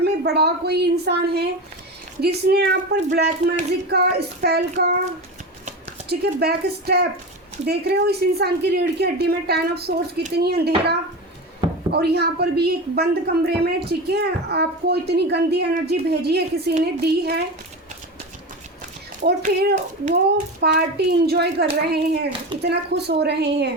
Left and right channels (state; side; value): normal; both; correlation 0.24